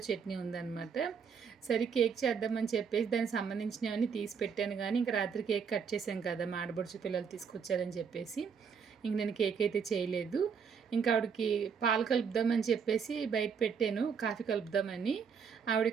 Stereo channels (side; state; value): left; quieter; 6.4 dB